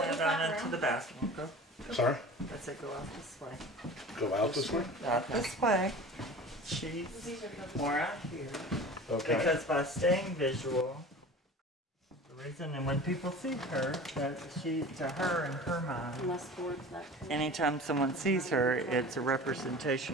down into the bathroom. Go. Sorry? I said go out this way. Go out this way? Out this way. She's more out here. Okay. Because by staying visual, the reason, and when people see her, that she, to her, in her mind, Less towards that. anytime someone sees her, it's a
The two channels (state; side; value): normal; both; correlation 0.38